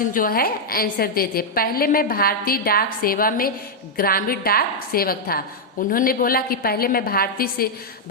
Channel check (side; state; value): both; normal; correlation -0.03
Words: जो है आंसर देते, पहले मैं भारतीय डाक सेवा में ग्रामीण डाक सेवक था। उन्होंने बोला कि पहले मैं